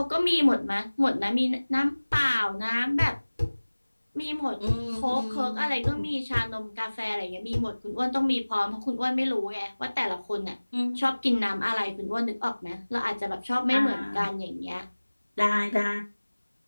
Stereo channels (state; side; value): inverted; both; correlation -1.00